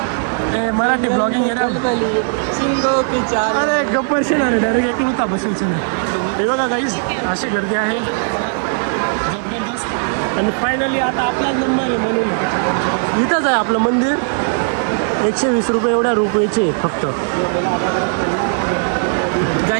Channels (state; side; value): silent; left; digital silence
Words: ए मराठी ब्लॉगिंग अरे गप्पर शेणार डायरेक्ट एक होता बसून हे बघा काहीच अशी गर्दी आहे जबरदस्त. आणि फायनली आता आपला नंबर आहे म्हणून इथंच आहे आपलं मंदिर. 120 रुपये एवढ्या रुपयाचे फक्त.